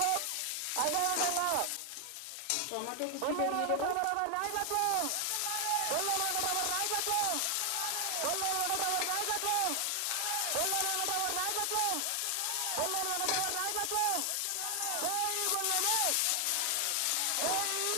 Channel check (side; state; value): both; different; correlation 0.00